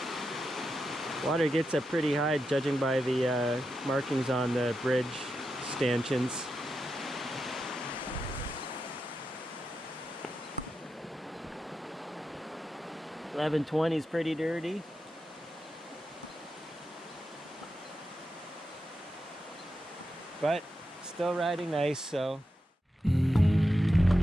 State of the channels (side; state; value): both; normal; correlation 0.88